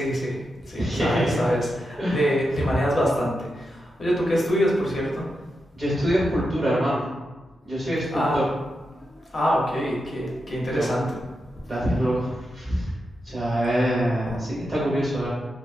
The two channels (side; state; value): both; normal; correlation 0.88